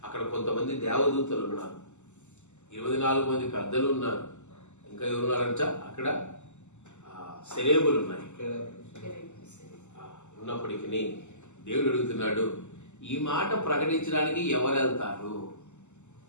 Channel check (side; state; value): right; late; 0.83 ms